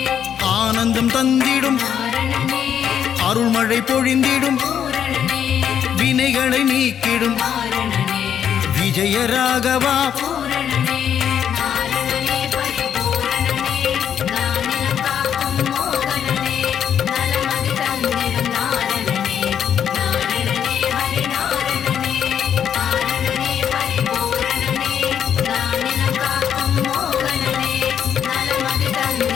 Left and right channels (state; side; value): quieter; right; 8.8 dB